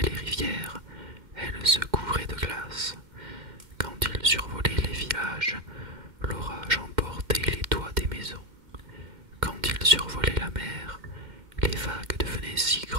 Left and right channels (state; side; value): late; left; 2.1 ms